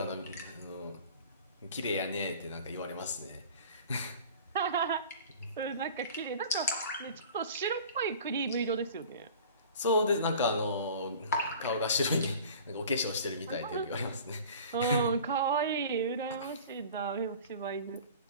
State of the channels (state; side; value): inverted; both; correlation -0.43